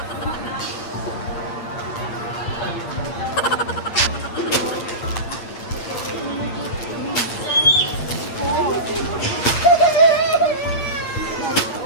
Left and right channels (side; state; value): right; late; 8.6 ms